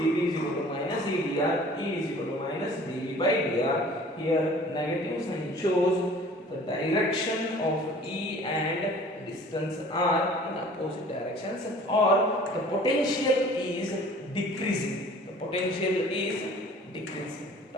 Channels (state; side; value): normal; both; correlation 0.48